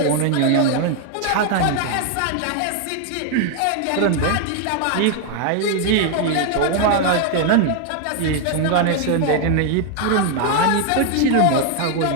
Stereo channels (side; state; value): both; different; correlation 0.00